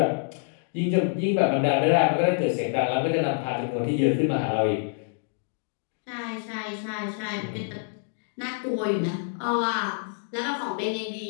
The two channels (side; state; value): right; silent; digital silence